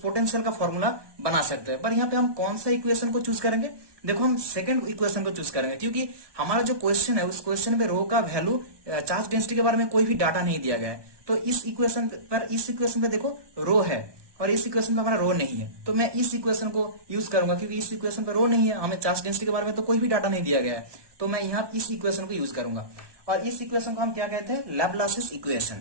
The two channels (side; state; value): left; late; 1.2 ms